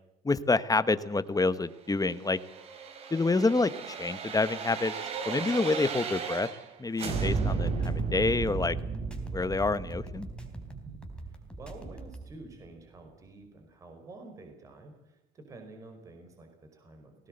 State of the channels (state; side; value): normal; both; correlation 0.62